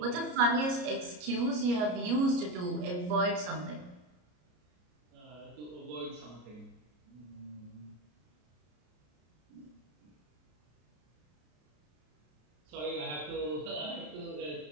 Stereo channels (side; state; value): left; late; 33 ms